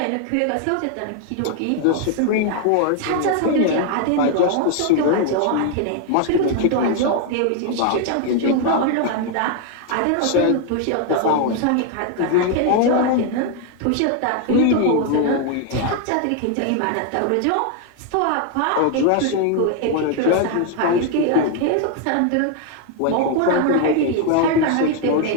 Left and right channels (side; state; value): both; different; correlation 0.00